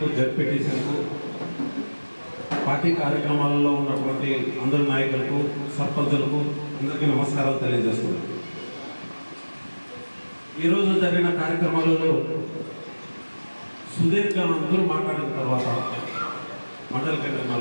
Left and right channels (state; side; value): inverted; both; correlation -1.00